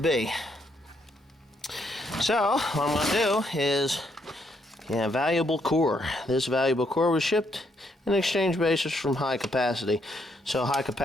So what I'm gonna do is, yeah, valuable core. This valuable core was shipped in exchange basis from High Capacity. So High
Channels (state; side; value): normal; both; correlation 0.74